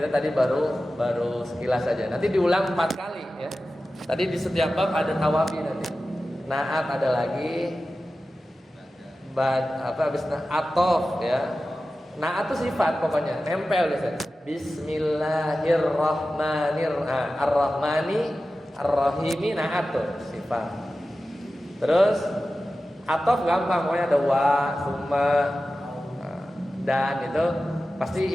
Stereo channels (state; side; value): normal; both; correlation 0.94